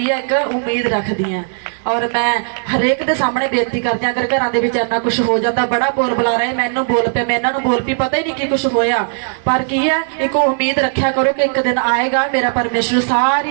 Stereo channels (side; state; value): left; silent; digital silence